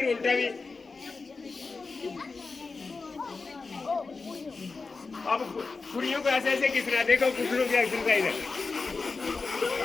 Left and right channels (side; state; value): right; quieter; 4.2 dB